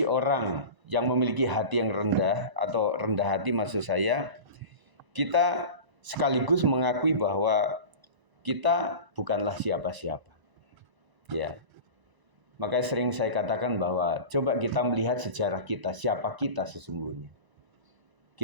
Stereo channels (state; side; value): late; left; 1.0 ms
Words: orang yang memiliki hati yang rendah atau rendah hati maksud saya, kita sekaligus mengakui bahwa kita bukanlah siapa-siapa. Ya. Makanya sering saya katakan bahwa coba kita melihat sejarah kita, siapa kita sesungguhnya.